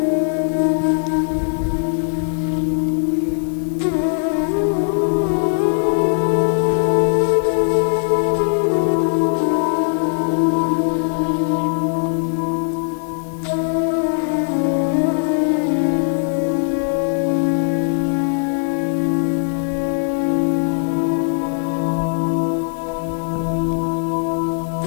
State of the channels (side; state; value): right; silent; 58 dB below the other